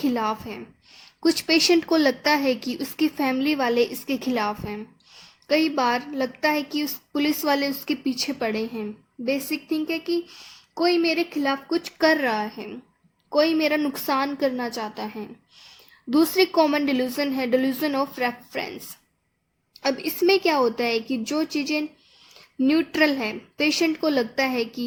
है। कुछ पेशेंट को लगता है कि उसकी फैमिली वाले इसके खिलाफ हैं। कई बार लगता है कि उस पुलिस वाले उसके पीछे पड़े हैं। बेसिक थिंक है कि कोई मेरे खिलाफ कुछ कर रहा है, कोई मेरा नुकसान करना चाहता है। दूसरी कॉमन डिल्यूजन है डिल्यूजन ऑफ रेफरेंस। अब इसमें क्या होता है कि जो चीज़ें न्यूट्रल है, पेशेंट को लगता है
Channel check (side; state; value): both; identical; correlation 1.00